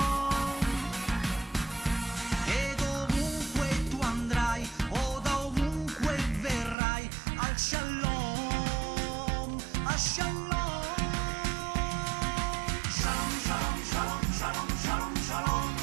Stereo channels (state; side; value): drops out; left; at 6.8 s